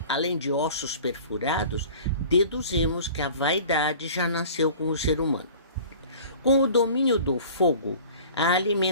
além de ossos perfurados, deduzimos que a vaidade já nasceu com o ser humano. Com o domínio do fogo, a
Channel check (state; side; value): inverted; both; correlation -0.44